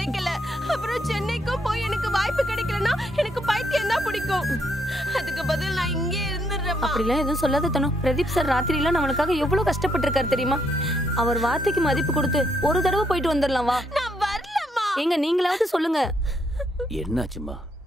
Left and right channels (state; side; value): normal; both; correlation 0.74